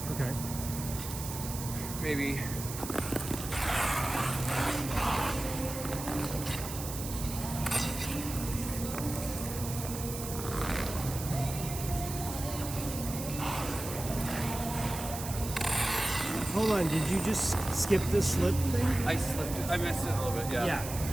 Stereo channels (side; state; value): right; noise; hiss, 8 dB below the sound